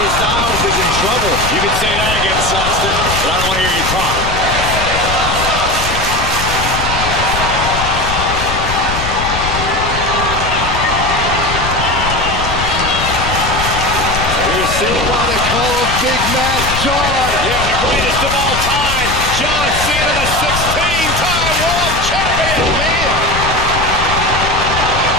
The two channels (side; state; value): left; noise; rumble, 6 dB below the sound